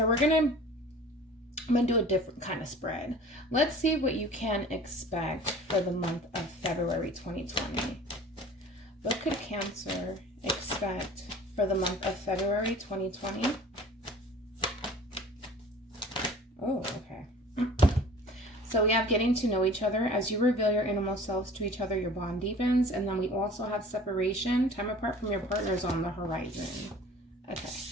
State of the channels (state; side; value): normal; both; correlation 0.45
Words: I'm gonna do a different kind of spread. Let's see what you can expect for the month of February 2020. What could Cancer expect for the month of February 2020? Oh, okay. So we have getting to know each other. As you reveal your innermost selves to each other, your bond deepens. And then we also have separation. Time apart from your partners on the horizon. Okay.